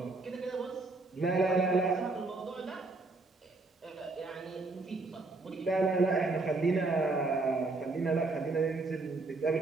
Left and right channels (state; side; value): quieter; left; 3.4 dB